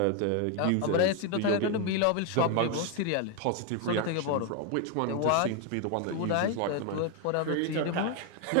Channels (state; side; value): different; both; correlation 0.01